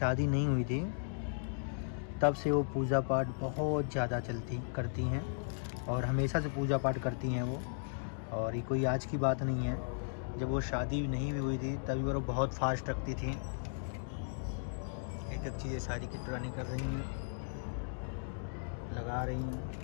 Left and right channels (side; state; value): right; silent; digital silence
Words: नहीं हुई थी तब से वो पूजा पाठ बहुत ज़्यादा करती हैं और हमेशा से पूजा पाठ करती हैं वो, और ये कोई आज की बात नहीं है। जब वो शादी नहीं भी हुई थी तभी वो बहुत फास्ट रखती थी। एक एक चीज़ें सारी किट्टू रानी कर रही हैं, लगा रही हैं।